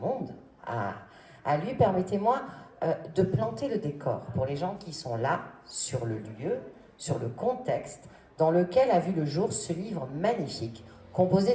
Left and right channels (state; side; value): identical; both; correlation 1.00